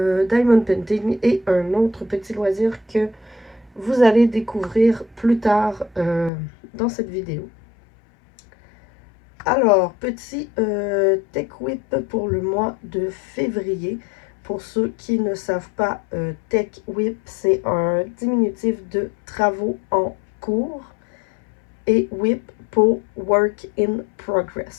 Painting et un autre petit loisir que vous allez découvrir plus tard dans cette vidéo. Alors, petit Tech Whip pour le mois de février. Pour ceux qui ne savent pas, Tech Whip, c'est un diminutif de travaux en cours et Whip pour Work in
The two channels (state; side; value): drops out; right; at 6.3 s